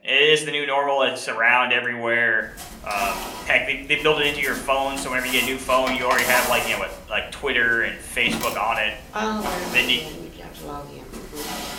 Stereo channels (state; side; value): identical; both; correlation 1.00